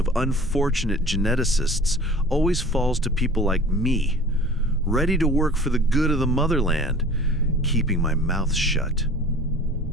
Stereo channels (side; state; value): both; normal; correlation 0.44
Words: unfortunate geneticists always falls to people like me, ready to work for the good of the motherland, keeping my mouth shut.